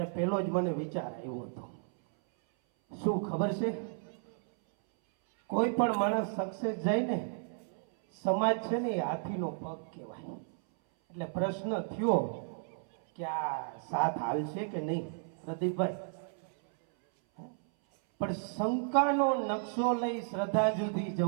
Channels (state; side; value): silent; left; 56 dB below the other